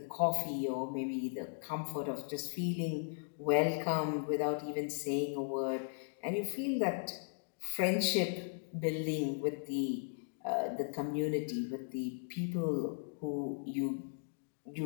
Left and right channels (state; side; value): silent; right; digital silence